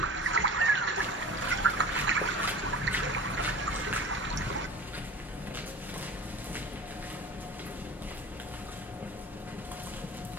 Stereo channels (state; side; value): normal; both; correlation 0.37